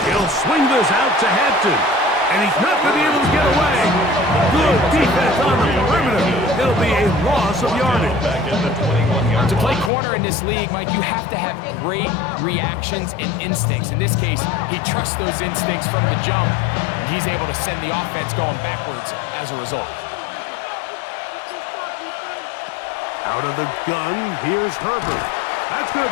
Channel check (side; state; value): right; drops out; at 9.9 s